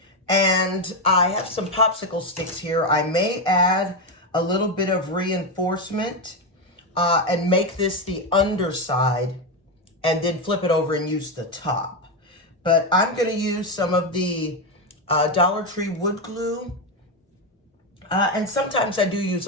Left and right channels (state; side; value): normal; both; correlation 0.09